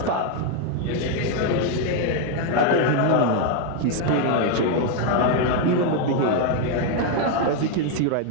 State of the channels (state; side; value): different; both; correlation 0.01